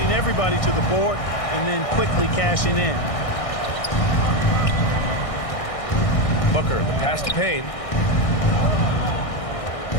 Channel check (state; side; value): late; right; 1.6 ms